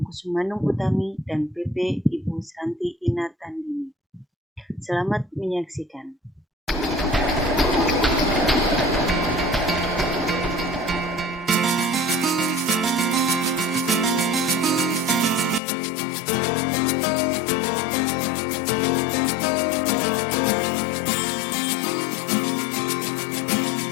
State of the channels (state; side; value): drops out; right; at 15.6 s